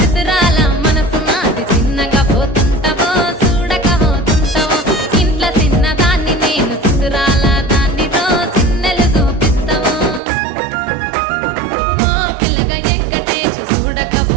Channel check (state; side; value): drops out; left; at 10.2 s